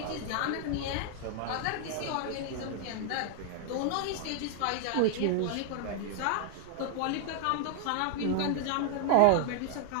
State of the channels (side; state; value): both; different; correlation 0.00